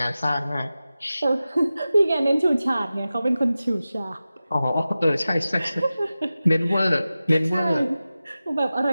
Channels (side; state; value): both; inverted; correlation -0.95